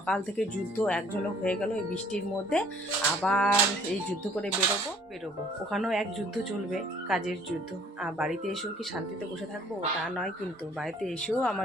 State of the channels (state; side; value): normal; both; correlation 0.57